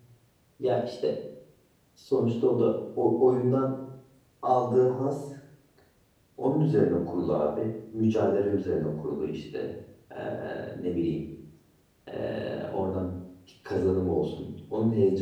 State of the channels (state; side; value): identical; both; correlation 1.00